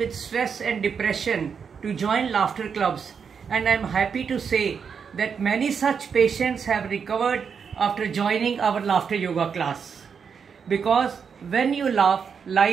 stress and depression to join laughter clubs, and I am happy to say that many such patients have recovered after joining our laughter yoga class. Because when you laugh,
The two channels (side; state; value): left; quieter; 6.5 dB